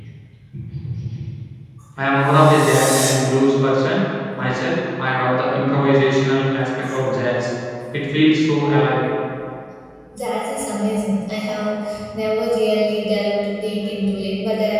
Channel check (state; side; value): identical; both; correlation 1.00